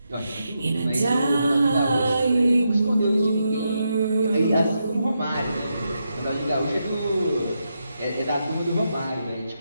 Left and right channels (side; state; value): both; inverted; correlation -0.84